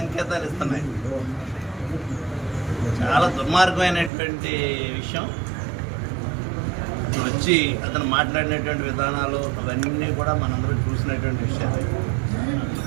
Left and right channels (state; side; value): drops out; left; at 4.1 s